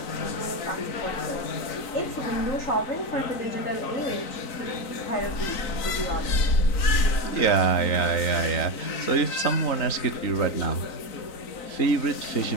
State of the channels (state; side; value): late; right; 3.9 ms